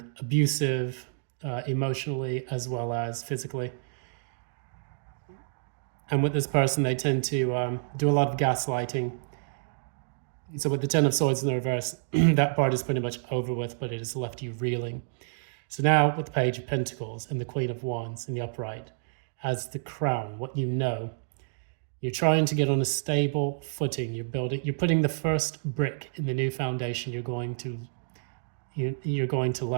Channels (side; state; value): left; silent; digital silence